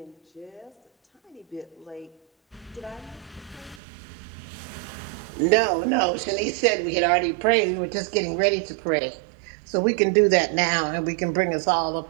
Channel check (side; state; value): left; drops out; at 3.8 s